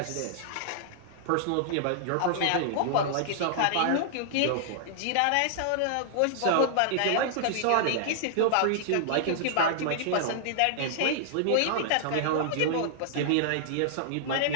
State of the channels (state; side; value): different; both; correlation -0.01